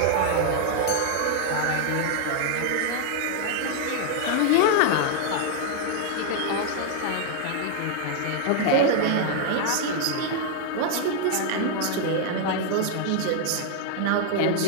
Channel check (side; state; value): both; different; correlation 0.00